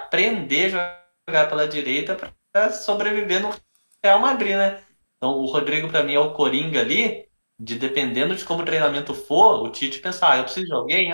a jogar pela direita para sobreviver no Real Madrid, né? Então, o Rodrigo, para mim, é o coringa ali, de dependendo de como o treinamento for, o Tite pensar, eu preciso de alguém,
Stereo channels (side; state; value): both; inverted; correlation -1.00